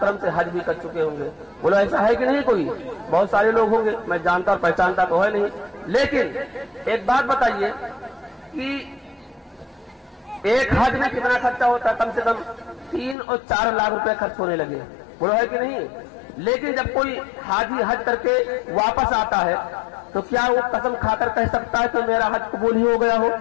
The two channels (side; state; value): right; drops out; at 13.2 s